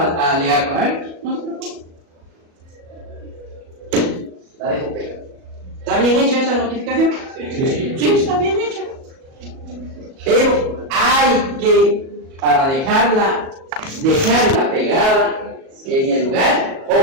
alegar con él, no se preocupe. La dejo pegada. ¿Está bien hecha esa notificación? Sí, está bien hecha. Pero hay que, para dejarla pegada en el lugar,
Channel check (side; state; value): left; late; 37 ms